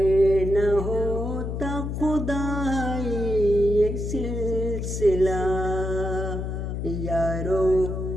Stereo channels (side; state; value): left; noise; hum, 4 dB below the sound